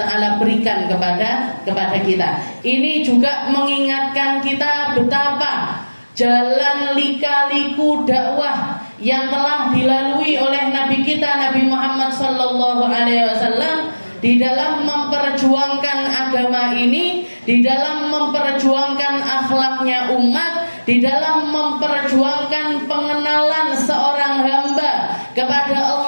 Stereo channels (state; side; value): inverted; both; correlation -1.00